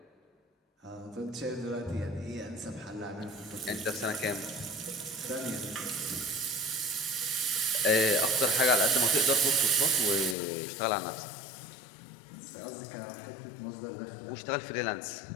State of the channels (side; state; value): right; drops out; at 10.4 s